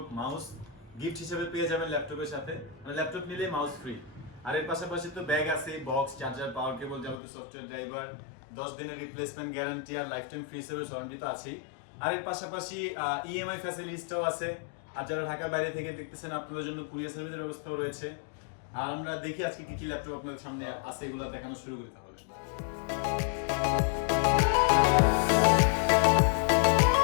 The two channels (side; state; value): right; drops out; at 7.2 s